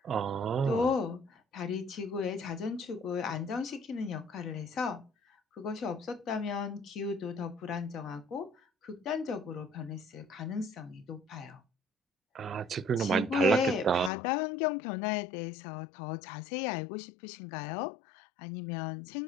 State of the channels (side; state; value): right; drops out; at 14.1 s